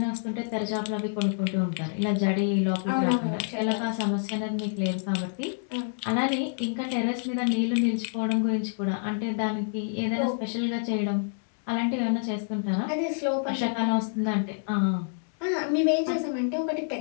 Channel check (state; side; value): silent; right; digital silence